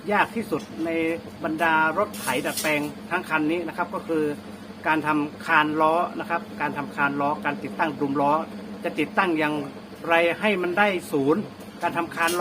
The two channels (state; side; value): identical; both; correlation 1.00